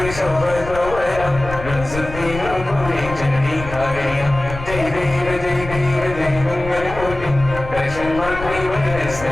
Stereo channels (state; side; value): noise; left; rumble, 10 dB below the sound